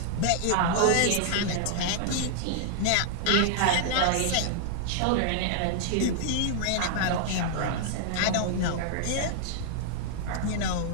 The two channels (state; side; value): different; both; correlation 0.00